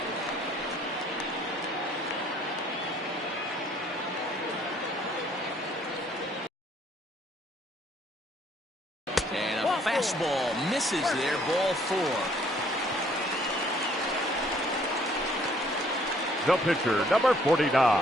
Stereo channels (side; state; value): both; normal; correlation 0.62